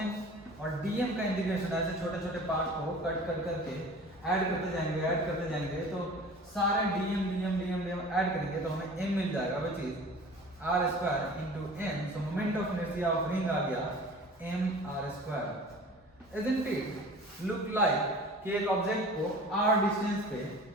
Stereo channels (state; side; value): normal; both; correlation 0.42